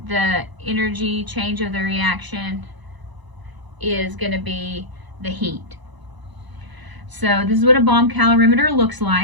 the energy change of the reaction is going to be the heat. So this is what a bomb calorimeter looks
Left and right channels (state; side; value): late; left; 1.0 ms